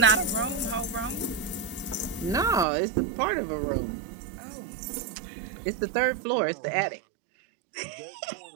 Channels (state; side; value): drops out; left; at 2.7 s